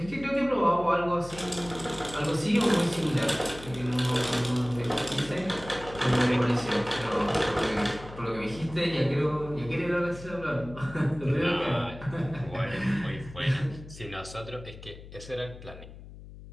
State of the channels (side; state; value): left; noise; hum, 16 dB below the sound